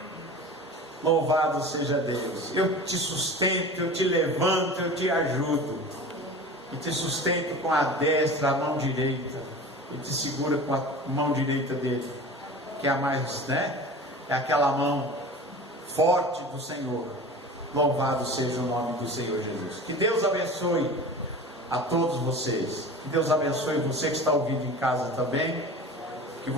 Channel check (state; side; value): normal; both; correlation 0.36